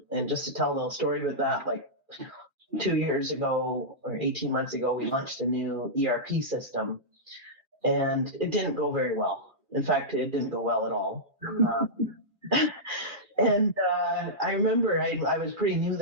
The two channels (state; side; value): late; left; 2.4 ms